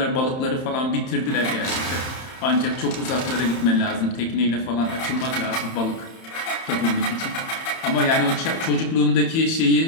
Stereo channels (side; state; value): right; late; 31 ms